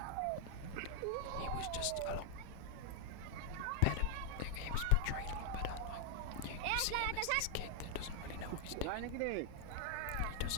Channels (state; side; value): different; both; correlation -0.01